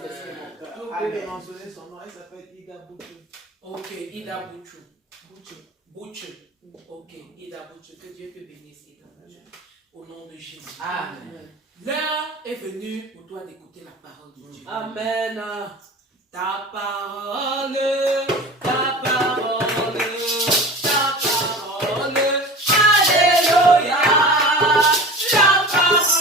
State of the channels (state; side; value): normal; both; correlation 0.36